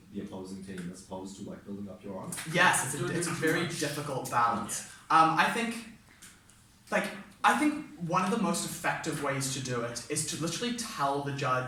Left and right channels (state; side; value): identical; both; correlation 1.00